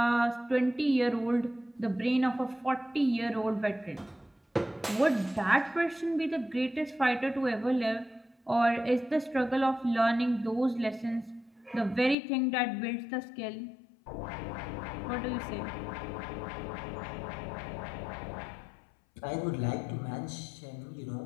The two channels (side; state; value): right; drops out; at 12.2 s